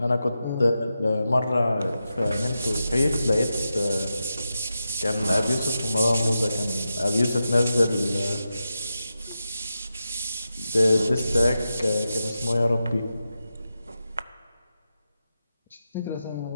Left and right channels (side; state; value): both; inverted; correlation -0.89